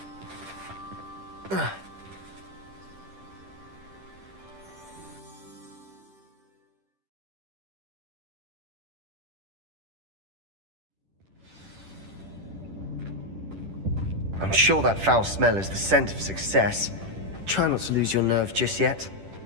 I'm sure that foul smell is the scent of success. Try not to lose your nerve just yet.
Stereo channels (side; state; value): left; late; 10 ms